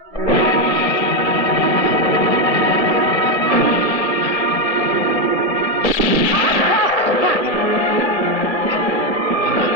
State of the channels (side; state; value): right; late; 1.6 ms